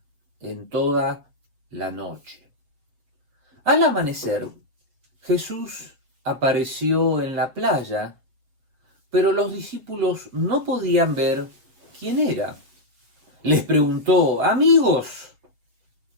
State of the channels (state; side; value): late; left; 6.7 ms